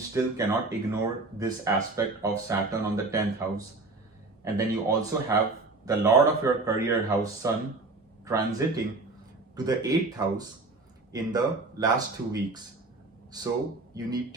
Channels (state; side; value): quieter; left; 3.4 dB